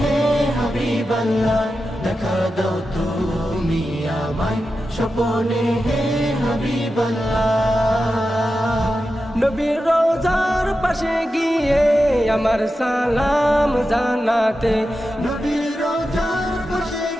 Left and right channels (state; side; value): normal; both; correlation 0.91